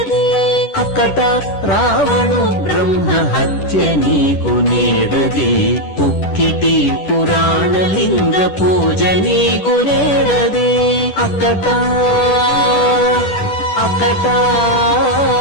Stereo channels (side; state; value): right; late; 10 ms